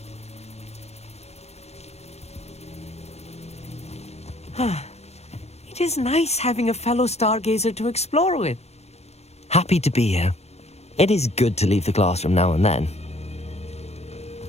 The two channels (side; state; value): right; late; 0.31 ms